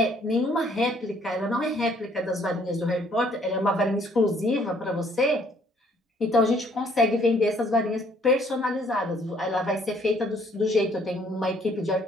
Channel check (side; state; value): both; normal; correlation 0.63